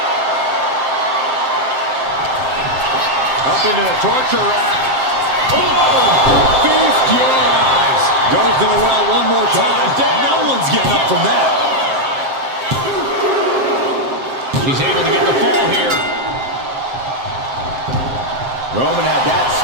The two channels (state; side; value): late; left; 7.6 ms